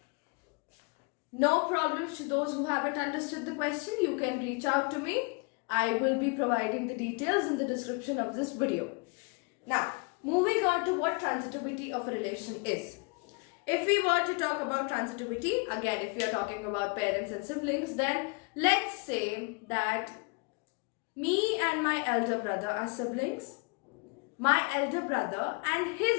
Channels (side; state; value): right; quieter; 31.9 dB